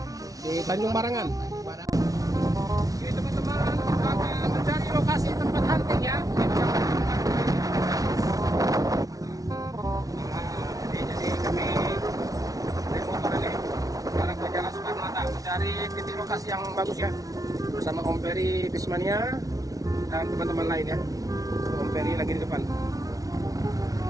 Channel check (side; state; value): left; late; 0.18 ms